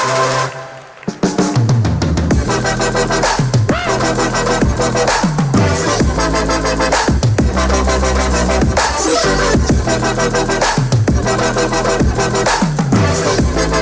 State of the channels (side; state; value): both; identical; correlation 1.00